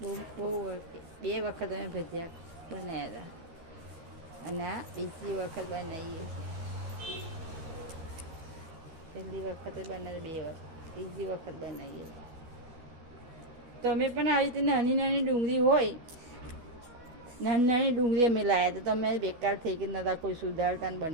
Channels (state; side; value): late; left; 13 ms